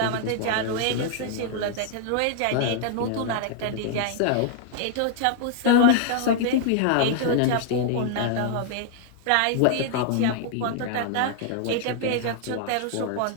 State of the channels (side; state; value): both; different; correlation 0.00